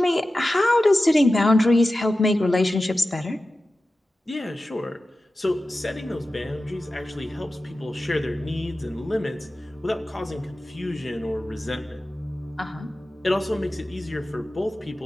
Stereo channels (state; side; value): normal; both; correlation 0.94